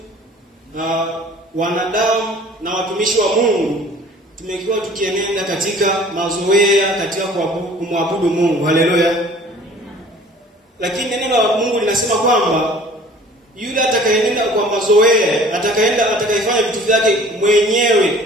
wanadamu na watumishi wa Mungu tumekuwa tukienenda katika mazoea katika kumwabudu Mungu. Haleluya. Lakini neno la Mungu linasema kwamba yule atakayenenda kwa mazoea, atakayefanya vitu vyake mwenyewe,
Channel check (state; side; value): normal; both; correlation 0.49